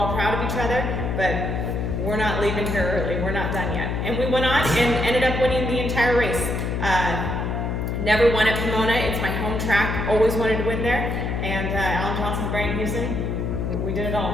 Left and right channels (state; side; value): noise; left; hum, 1 dB below the sound